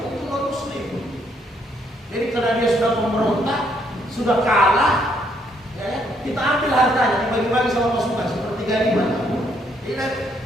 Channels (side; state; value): both; normal; correlation 0.71